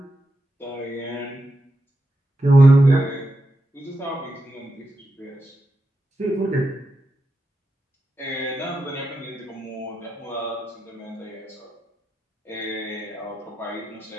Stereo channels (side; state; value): both; normal; correlation 0.87